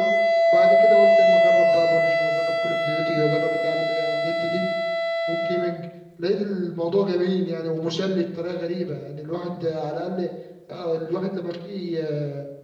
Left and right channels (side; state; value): both; identical; correlation 1.00